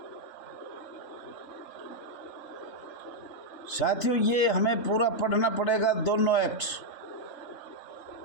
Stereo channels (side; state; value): right; late; 3.4 ms